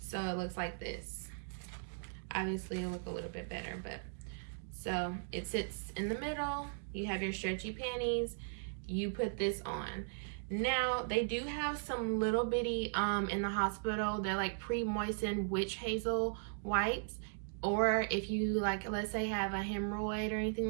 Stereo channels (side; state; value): left; silent; digital silence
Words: it looks like this. Obviously it'll look a little bit better, but so it sits in the middle. You have your stretchy panties. You put this on. Now they do have some little bitty in the hospital. They're like pre-moistened witch hazel wipes. Or if you let's say have a hemorrhoid or